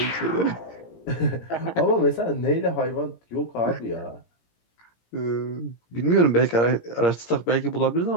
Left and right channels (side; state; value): right; late; 17 ms